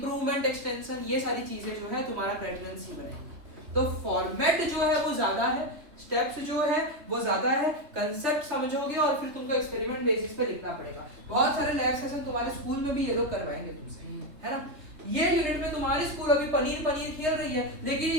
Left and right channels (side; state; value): left; late; 3.3 ms